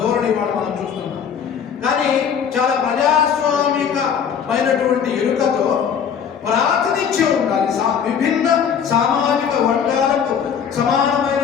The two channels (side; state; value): right; quieter; 7.6 dB